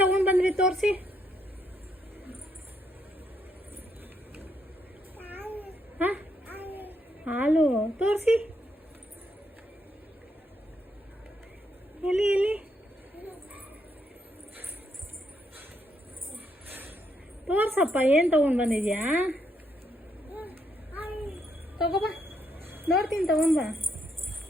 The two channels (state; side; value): normal; both; correlation 0.76